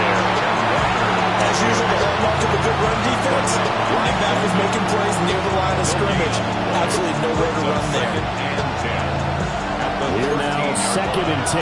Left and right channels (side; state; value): both; identical; correlation 1.00